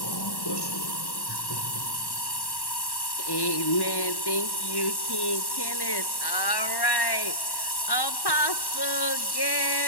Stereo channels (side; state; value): right; late; 1.1 ms